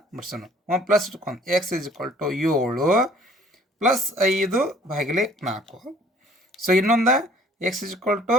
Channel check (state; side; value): normal; both; correlation 0.56